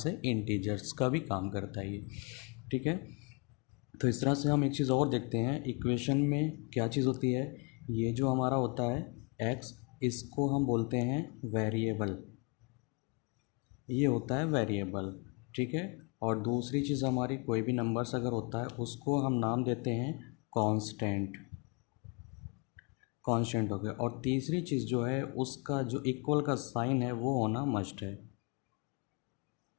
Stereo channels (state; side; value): quieter; right; 32.8 dB